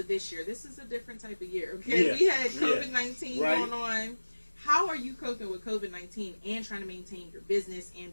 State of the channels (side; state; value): both; inverted; correlation -1.00